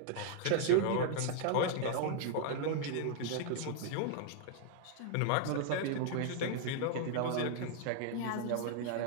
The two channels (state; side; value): different; both; correlation 0.00